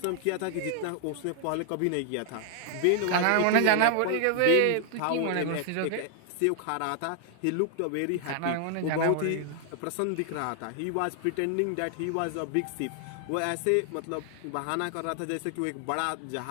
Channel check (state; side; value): different; both; correlation 0.00